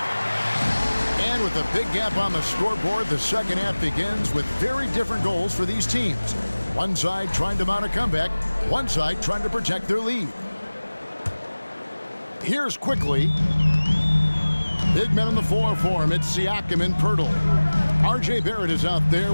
And with a big gap on the scoreboard, the second half begins with very different goals for these teams. One side trying to mount a comeback, one side trying to protect their lead. Here's Quickly. Big men on the floor for him. It's Siakam and Pirtle. R.J. Barrett is out there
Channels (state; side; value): inverted; both; correlation -1.00